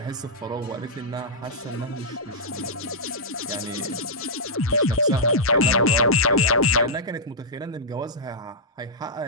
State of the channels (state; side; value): normal; both; correlation -0.10